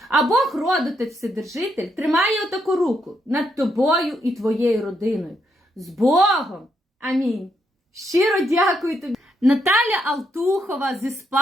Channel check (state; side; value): normal; both; correlation 0.78